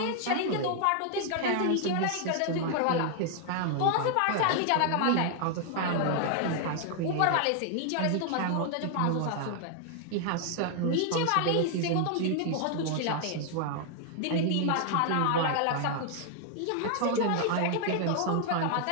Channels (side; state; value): both; different; correlation 0.00